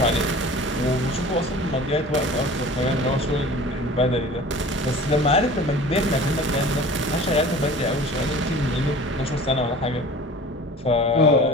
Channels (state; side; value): normal; both; correlation 0.41